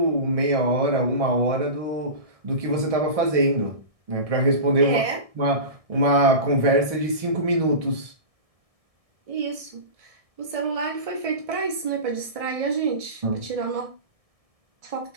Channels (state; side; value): late; left; 1.6 ms